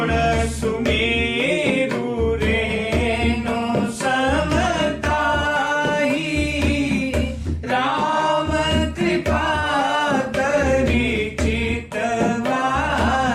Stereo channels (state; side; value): identical; both; correlation 1.00